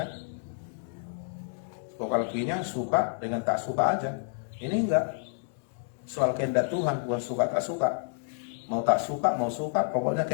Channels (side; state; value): right; silent; digital silence